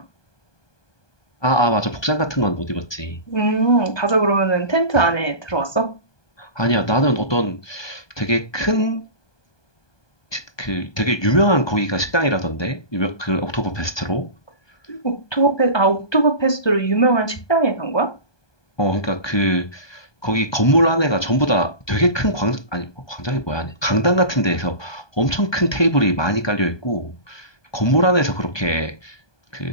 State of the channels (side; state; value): right; late; 1.2 ms